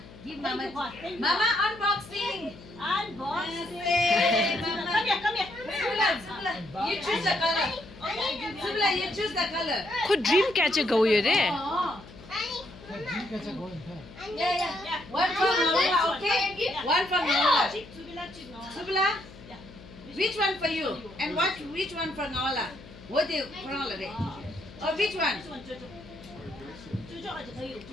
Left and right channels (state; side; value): noise; left; hum, 18 dB below the sound